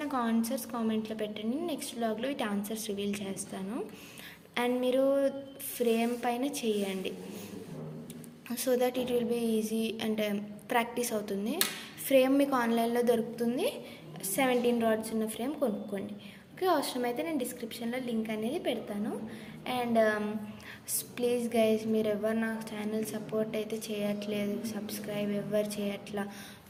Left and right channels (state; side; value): identical; both; correlation 1.00